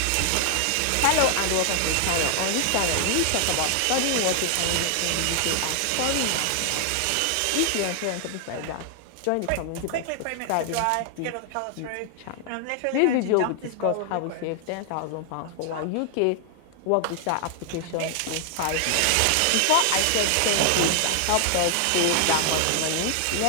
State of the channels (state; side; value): different; both; correlation 0.00